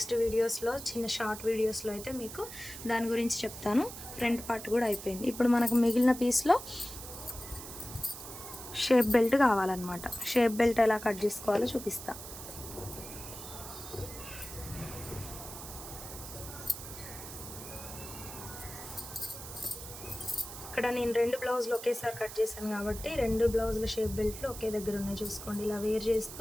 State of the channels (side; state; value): right; noise; hiss, 11 dB below the sound